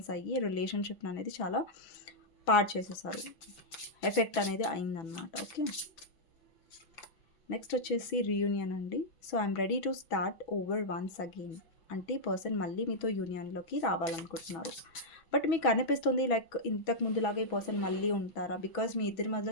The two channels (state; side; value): late; right; 6.1 ms